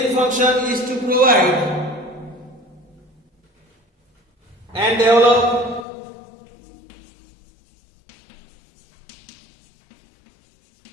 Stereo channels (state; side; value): drops out; right; at 5.9 s